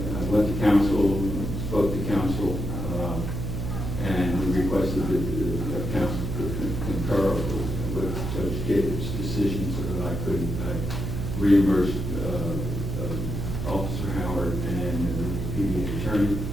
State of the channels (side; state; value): right; noise; hum, 4 dB below the sound